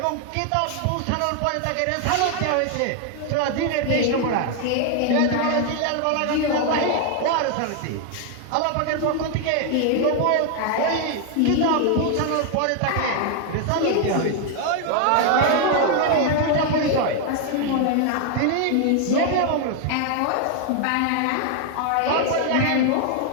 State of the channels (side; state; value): both; different; correlation 0.00